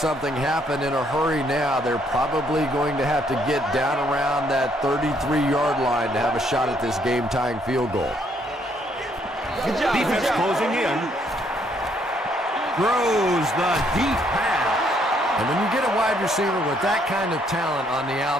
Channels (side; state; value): both; normal; correlation 0.69